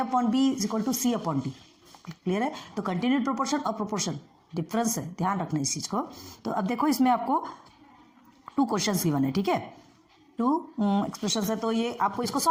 is equal to C/D। Clear है? तो कंटिन्यूड प्रोपोर्शन और प्रोपोर्शन डिफरेंस है, ध्यान रखना इस चीज को। तो अब देखो, इसमें आपको 2 क्वेश्चंस गिवन है। ठीक है, 2 एक्सप्रेशन है, तो ये आपको इसको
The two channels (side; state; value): both; identical; correlation 1.00